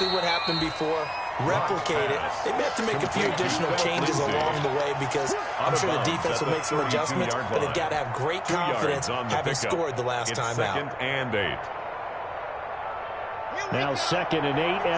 what happened before, replicate it. They may have to make a few additional changes along the way because I'm sure the defense will make some adjustments, but they've got to have great confidence having scored the last time out. 2nd and 8. Now 2nd and 8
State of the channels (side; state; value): both; identical; correlation 1.00